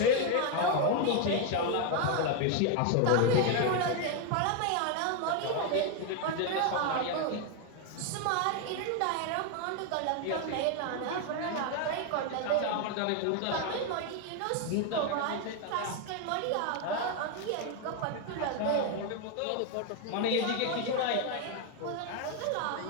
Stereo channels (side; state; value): both; different; correlation 0.01